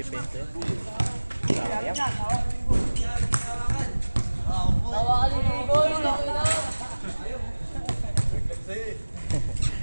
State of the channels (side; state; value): both; inverted; correlation -1.00